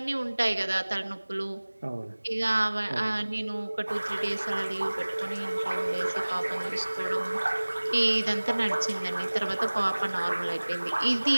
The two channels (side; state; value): both; inverted; correlation -1.00